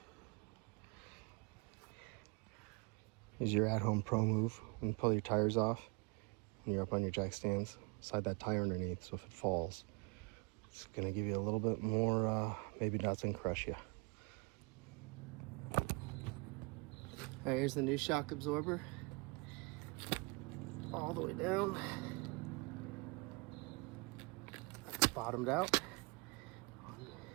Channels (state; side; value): quieter; left; 29.3 dB